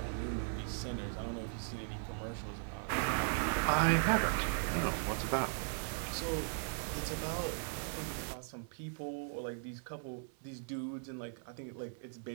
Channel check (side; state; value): left; silent; 52 dB below the other